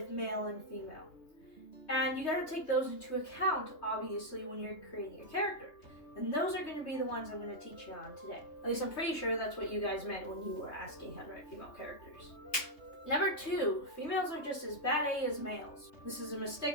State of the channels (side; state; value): right; late; 3.2 ms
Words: male and female. And you got to take those into account, obviously, when you're creating a character. And those are going to be the ones I'm going to teach you on today. At least I'm pretty sure that's what you guys meant when you were asking how to write female characters. Number 2, females are just as bad A as males. This is a